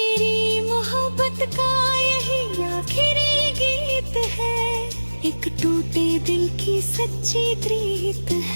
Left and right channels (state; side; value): inverted; both; correlation -1.00